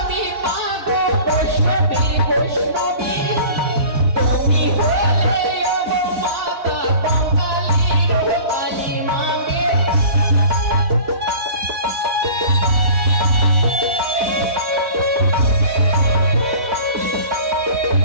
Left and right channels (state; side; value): late; left; 4.1 ms